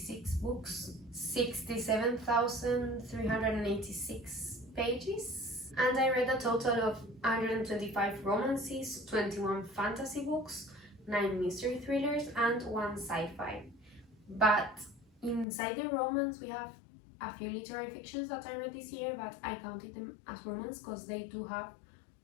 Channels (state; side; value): drops out; right; at 15.5 s